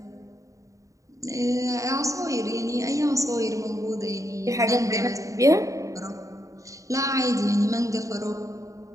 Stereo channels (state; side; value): late; left; 0.16 ms